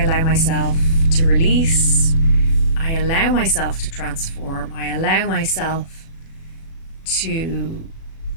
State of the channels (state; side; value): late; right; 36 ms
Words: myself to release. I allow myself to transform. I allow myself to